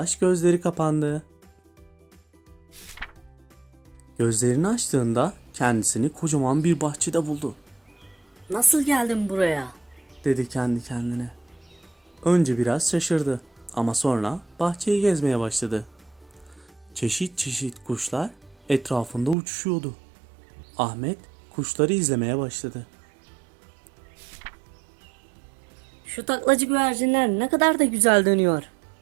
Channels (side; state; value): left; drops out; at 19.4 s